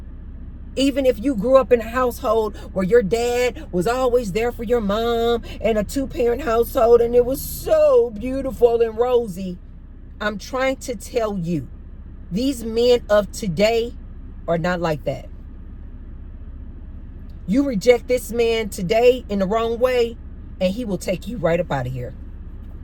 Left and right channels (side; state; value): both; identical; correlation 1.00